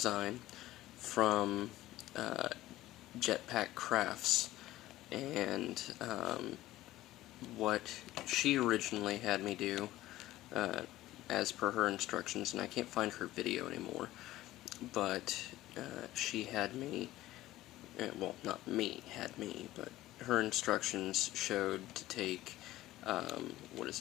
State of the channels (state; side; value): quieter; right; 15.9 dB